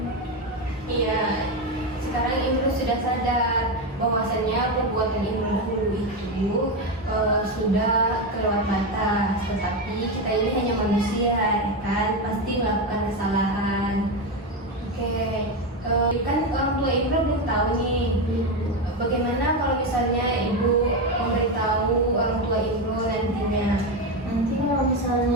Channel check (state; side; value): normal; both; correlation 0.13